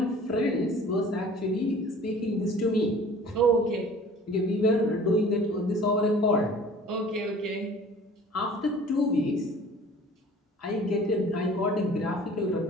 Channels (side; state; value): both; normal; correlation 0.47